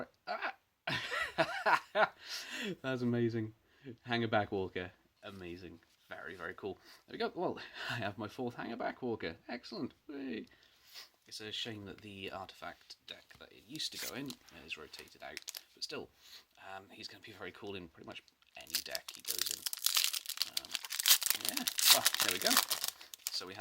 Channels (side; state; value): both; identical; correlation 1.00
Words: that's amazing. Hangerback Walker, amazing, very cool. There we go. Well, I have my 4th Hangerback Walker. Excellent. Hey. It's a shame that the artifact deck that it used to go in is rotated out, but still, he's going to be very cool in pretty much any deck he goes in. Yeah, well, there we go. So we